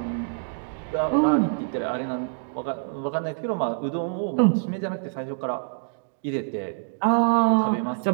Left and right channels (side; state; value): left; silent; digital silence